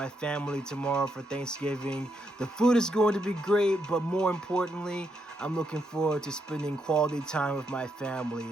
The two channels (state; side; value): normal; both; correlation 0.79